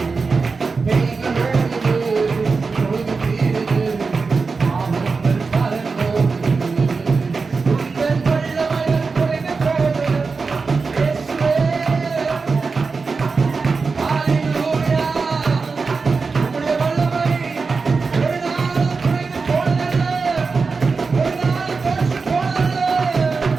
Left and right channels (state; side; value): quieter; left; 4.5 dB